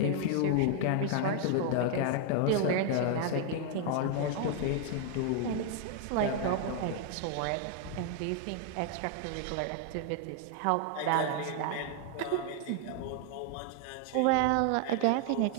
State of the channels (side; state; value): both; different; correlation 0.00